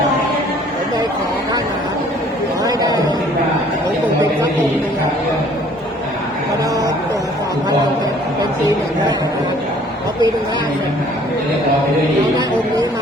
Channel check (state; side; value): normal; both; correlation 0.56